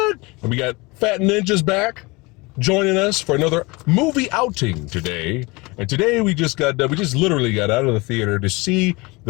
and we got Phat Ninjas back joining us for another movie outing today. And today we just literally got out of the theater to see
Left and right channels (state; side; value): quieter; right; 24.9 dB